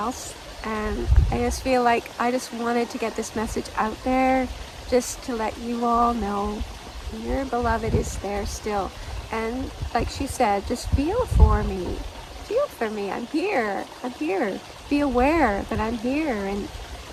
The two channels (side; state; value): both; identical; correlation 1.00